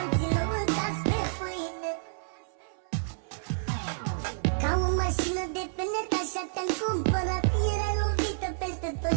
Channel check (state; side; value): silent; left; 57 dB below the other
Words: și nu mâncați pe pâine. Ca o mașină de penet așa te-am cumpărat, erai lovită peste